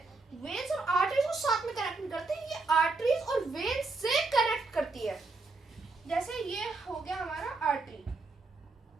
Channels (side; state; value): left; quieter; 3.5 dB